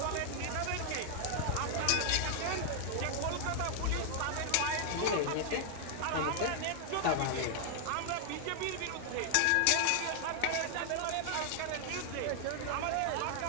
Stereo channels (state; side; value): different; both; correlation 0.00